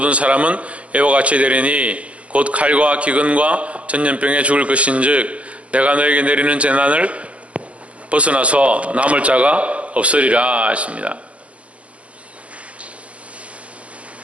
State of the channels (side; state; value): left; late; 0.063 ms